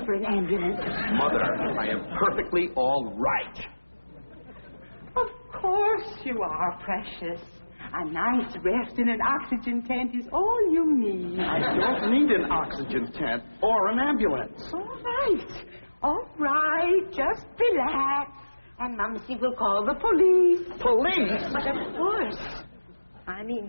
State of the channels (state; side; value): inverted; both; correlation -1.00